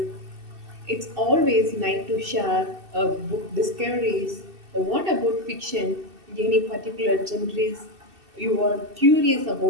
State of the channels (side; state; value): left; late; 2.7 ms